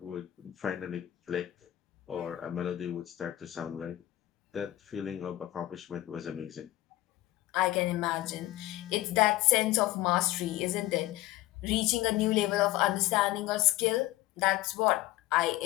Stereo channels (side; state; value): right; quieter; 15.7 dB